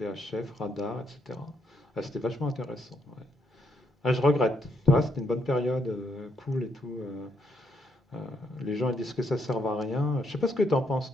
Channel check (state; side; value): normal; both; correlation 0.75